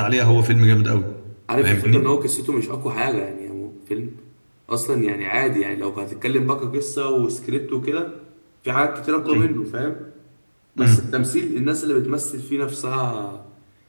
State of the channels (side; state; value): both; inverted; correlation -1.00